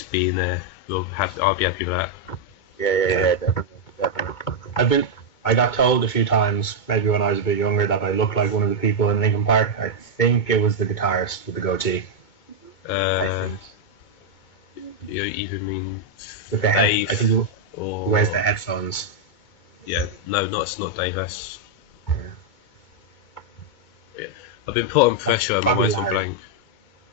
being there. I'll be happy with that. Yeah, definitely. I got told a few times, maybe when I was a bit younger, that I looked like one of the people in Linkin Park. I think it was the guitarist with the goatee. I think. You even mean with the head? Dave, I think he or wears the headphones. Yeah, no, it's not Dave. That's yeah. I've been put on pressure. I'm Probably always Larry. blank.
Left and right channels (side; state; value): right; late; 2.2 ms